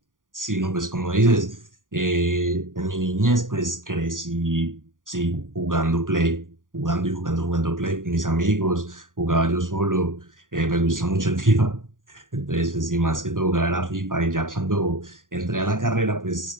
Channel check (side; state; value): left; late; 0.89 ms